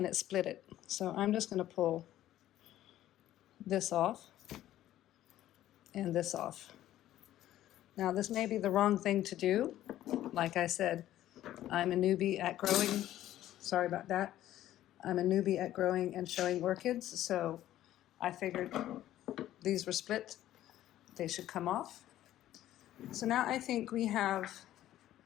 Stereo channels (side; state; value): right; quieter; 13.3 dB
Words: split it. So I'm just going to pull this off and this off. Now this may be the wrong thing to do. Like I said, I'm a newbie at growing. Sorry about that. I'm a newbie at growing and showing orchids, so I figured these were split. They should come off. So now I think we have